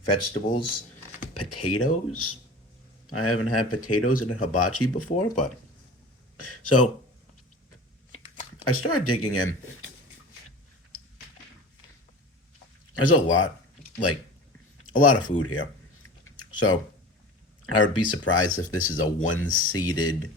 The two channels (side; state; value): both; normal; correlation 0.36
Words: vegetables, potatoes. I haven't had potatoes in a hibachi before, but so I started digging in. There's a lot, like a lot of food here. So I would be surprised if this is a one